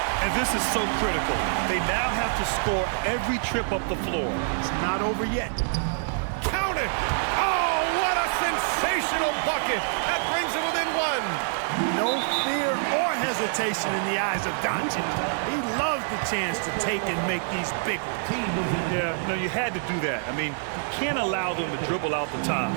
And this is so critical. They now have to score every trip up the floor. It's not over yet. Count it! Oh, what a sensational bucket! That brings it within one. No fear or hesitation in the eyes of Doncic. He loves the chance to take and make these big ones. Yeah, no, you had to do that. I mean, you can't allow them to dribble out the time.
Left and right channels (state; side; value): silent; left; digital silence